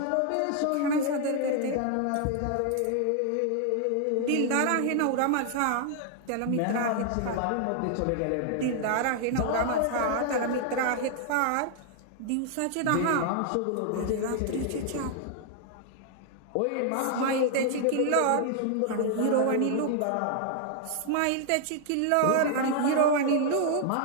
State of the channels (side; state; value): both; different; correlation 0.00